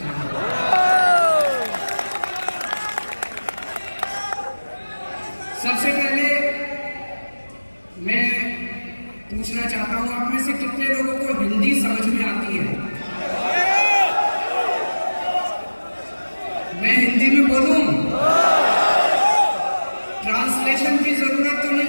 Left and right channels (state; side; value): inverted; both; correlation -1.00